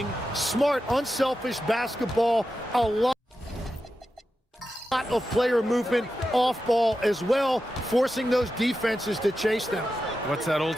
smart, unselfish basketball, a lot of player movement off ball as well, forcing those defenses to chase them. What's that old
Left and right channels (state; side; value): normal; both; correlation 0.90